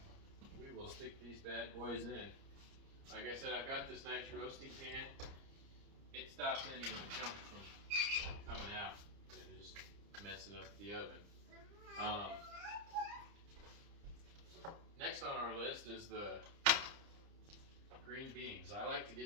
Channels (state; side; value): late; left; 30 ms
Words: We will stick these bad boys in. Like I said, I've got this nice roasting pan. It stops any of the junk from coming out and just messing up the oven. Next on our list is the green beans. I like to